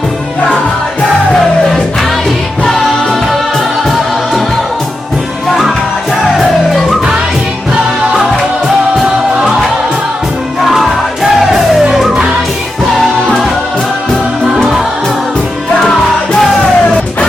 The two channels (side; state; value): both; normal; correlation 0.88